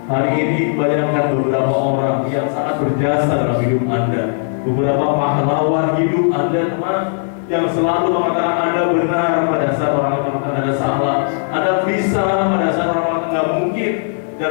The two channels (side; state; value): right; silent; 60 dB below the other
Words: Hari ini bayangkan beberapa orang yang sangat berjasa dalam hidup Anda, beberapa pahlawan hidup Anda, teman, yang selalu mengatakan Anda benar pada saat orang mengatakan Anda salah, Anda bisa pada saat orang mengatakan nggak mungkin, dan